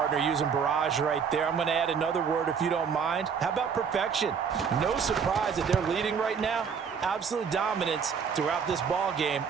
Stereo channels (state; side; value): quieter; left; 6.5 dB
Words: using barrage right there. I'm going to add another word if you don't mind. How about perfection? No surprise that they're leading right now. Absolute dominance throughout this ball game